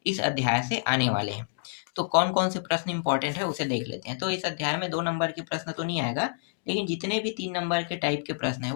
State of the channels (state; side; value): silent; right; digital silence